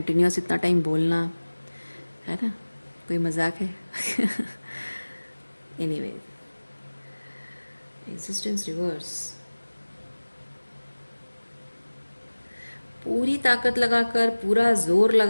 इतना टाइम बोलना, है ना, कोई मजाक है। एनीवे, एग्जिस्टेंस रिवर्स, पूरी ताकत लगाकर, पूरा जोर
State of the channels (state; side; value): inverted; both; correlation -1.00